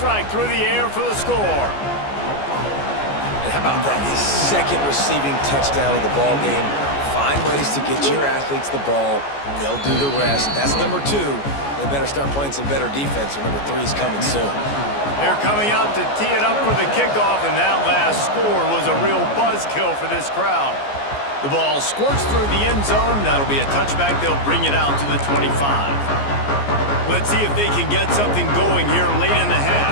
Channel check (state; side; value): late; right; 14 ms